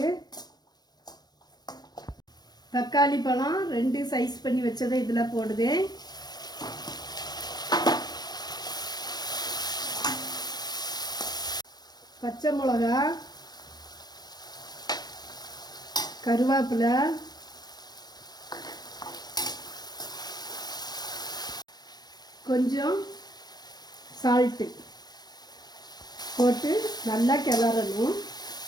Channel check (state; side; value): late; right; 0.19 ms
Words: தக்காளி பழம் 2 சைஸ் பண்ணி வச்சதை இதில் போடுது. பச்சை மிளகா, கருவேப்பிலை, கொஞ்சம் சால்ட்டு போட்டு நல்லா கிளறணும்.